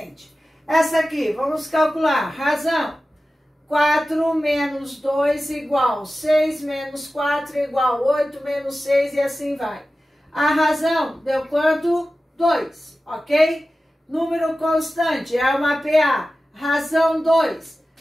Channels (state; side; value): normal; both; correlation 0.95